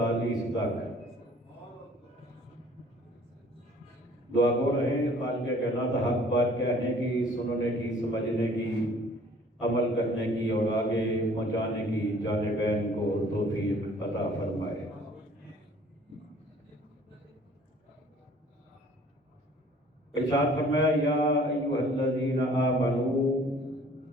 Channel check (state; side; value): normal; both; correlation 0.54